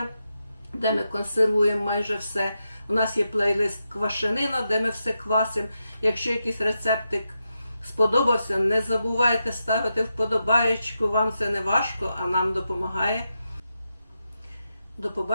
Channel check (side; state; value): both; inverted; correlation -0.87